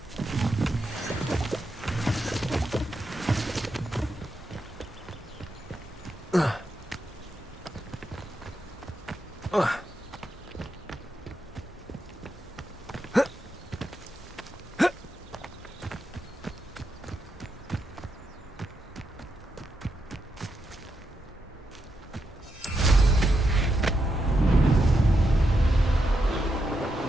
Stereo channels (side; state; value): both; normal; correlation 0.84